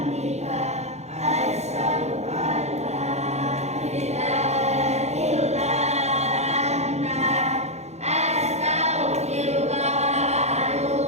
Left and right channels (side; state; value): left; late; 0.32 ms